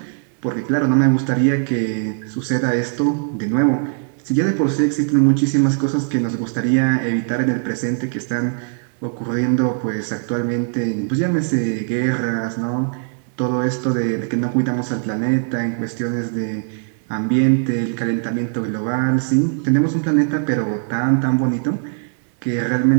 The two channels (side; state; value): left; silent; 64 dB below the other